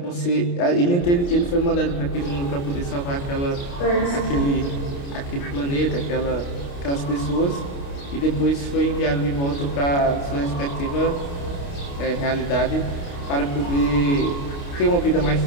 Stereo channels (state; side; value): late; right; 29 ms